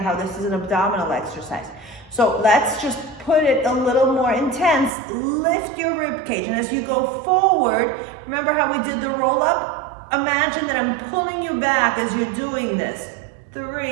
how this is an abdominal exercise. So let's just put it a little more intense. Lift your rib cage. And as you go forward, remember how we did the roll up? Imagine that I'm pulling you back as you're doing this.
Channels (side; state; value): left; drops out; at 4.9 s